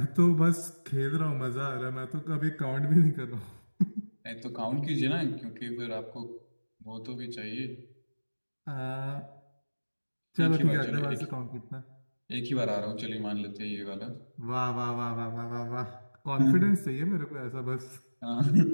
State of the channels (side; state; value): both; inverted; correlation -1.00